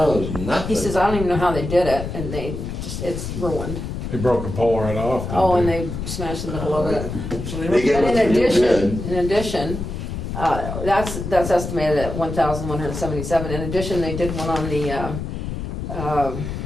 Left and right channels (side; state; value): left; noise; rumble, 6 dB below the sound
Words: there's nothing. He says, I don't even know how they did it, and they just, it's ruined. They broke the pole right off. didn't Oh, and they smashed the middle of it. So they They must- get And what in you addition, did. that's estimated at 1,177. In addition, they did one on the,